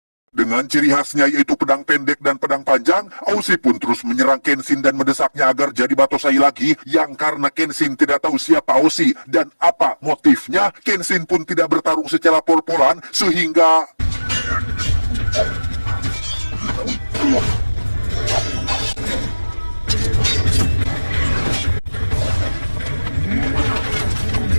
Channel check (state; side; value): inverted; both; correlation -1.00